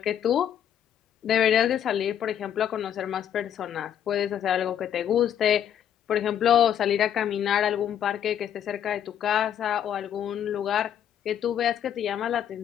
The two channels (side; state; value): right; quieter; 9.7 dB